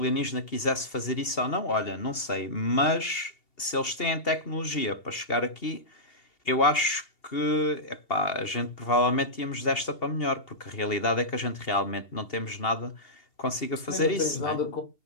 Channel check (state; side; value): late; right; 2.8 ms